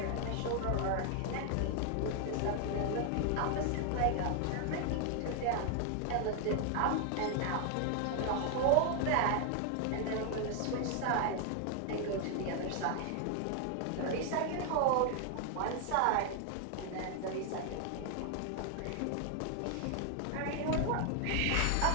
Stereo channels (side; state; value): both; different; correlation 0.00